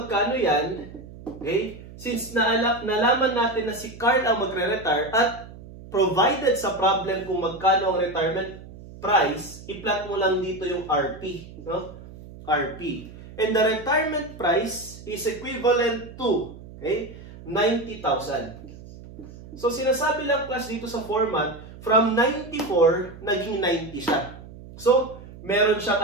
yan, okay? Since nalaman natin na si Carl ang magre-retire at provided sa problem kung magkano ang retirement price, i-plot mo lang dito yung RP, no? RP. And the retirement price is equivalent to, okay, 90,000. So sinasabi lang class dito sa format, from 94 naging 90 siya. So meron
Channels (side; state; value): right; noise; hum, 16 dB below the sound